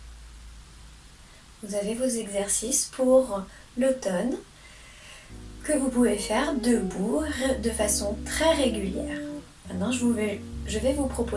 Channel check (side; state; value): both; identical; correlation 1.00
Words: Vous avez vos exercices pour l'automne que vous pouvez faire debout de façon très régulière. Maintenant, je vais vous